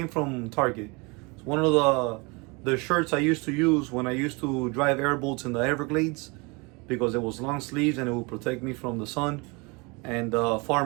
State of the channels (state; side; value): quieter; left; 28.6 dB